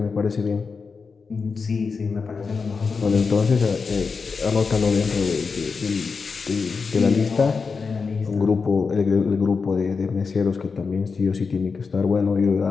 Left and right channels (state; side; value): quieter; right; 5.0 dB